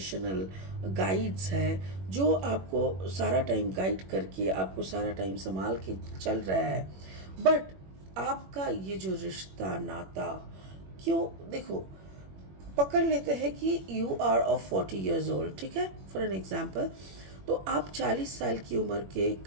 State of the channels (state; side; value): late; left; 21 ms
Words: गाइड्स है, जो आपको सारा टाइम गाइड करके आपको सारा टाइम संभाल के चल रहा है। बट आपका ये जो रिश्ता नाता, क्यों, देखो पकड़ लेते हैं कि you are of 40 years old, ठीक है, फॉर एन एग्जाम्पल। तो आप 40 साल की उम्र के एक